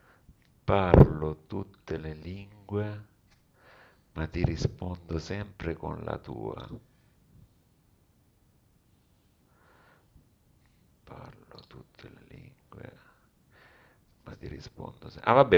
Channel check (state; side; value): identical; both; correlation 1.00